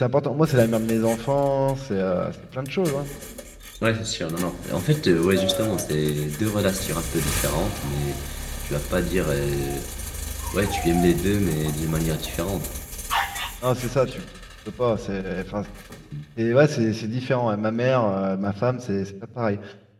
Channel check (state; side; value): identical; both; correlation 1.00